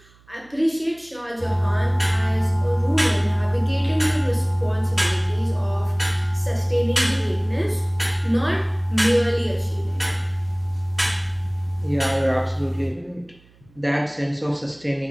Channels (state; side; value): noise; right; hum, 29 dB below the sound